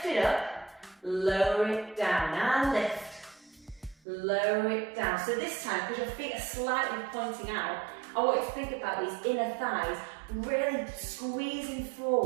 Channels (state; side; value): drops out; left; at 4.0 s